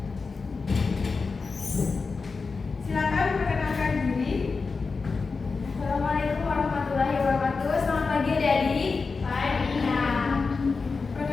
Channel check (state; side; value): quieter; right; 4.5 dB